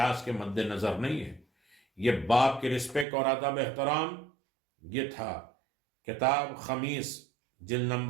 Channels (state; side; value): drops out; left; at 3.1 s